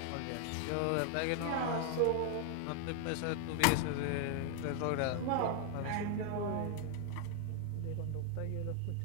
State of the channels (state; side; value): different; both; correlation 0.00